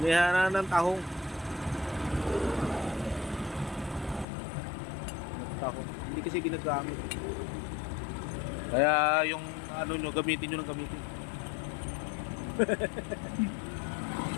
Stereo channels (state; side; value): drops out; right; at 4.2 s